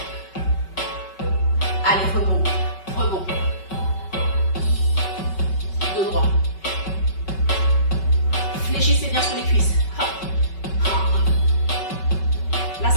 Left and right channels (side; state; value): right; late; 5.3 ms